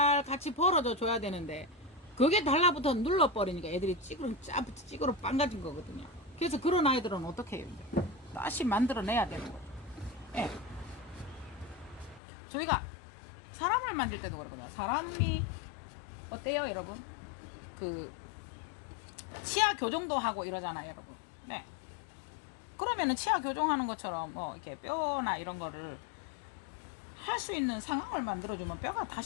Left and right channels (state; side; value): drops out; right; at 12.2 s